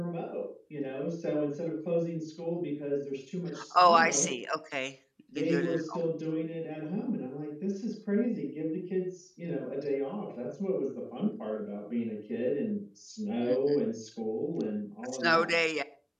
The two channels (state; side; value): identical; both; correlation 1.00